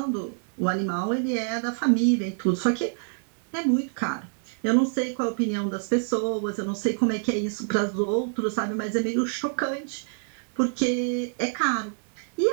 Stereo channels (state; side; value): silent; left; digital silence